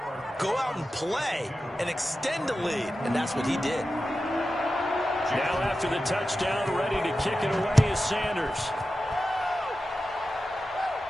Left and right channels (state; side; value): normal; both; correlation 0.92